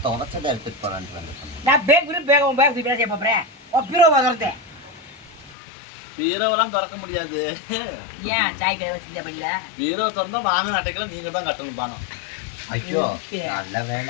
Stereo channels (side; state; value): right; drops out; at 5.6 s